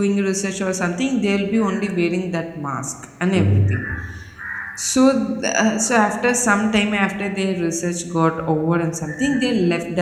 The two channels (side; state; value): both; identical; correlation 1.00